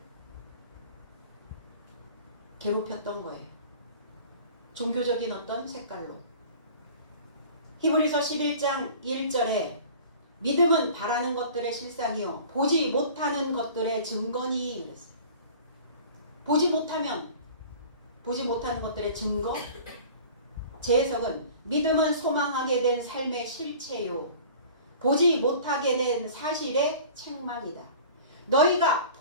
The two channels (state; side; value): inverted; both; correlation -0.44